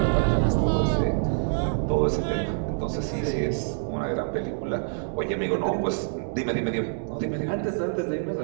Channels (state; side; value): silent; left; digital silence